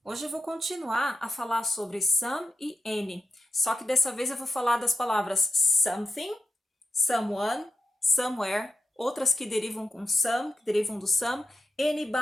Hoje eu vou continuar a falar sobre some e any, só que dessa vez eu vou falar das palavras something, someone, somewhere, outras que derivam com some, que derivam do some,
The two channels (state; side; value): normal; both; correlation 0.88